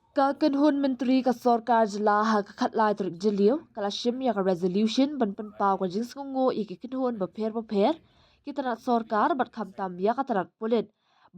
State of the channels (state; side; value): identical; both; correlation 1.00